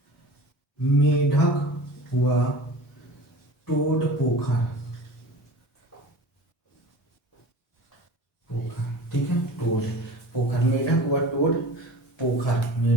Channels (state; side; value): normal; both; correlation 0.38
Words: मेढक हुआ टोड पोखर, पोखर, ठीक है, टोड पोखर, मेढक हुआ टोड पोखर,